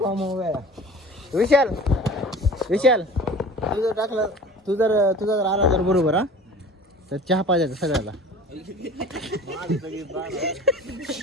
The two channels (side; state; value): both; normal; correlation 0.42